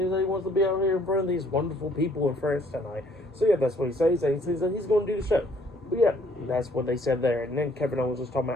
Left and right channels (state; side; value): normal; both; correlation 0.62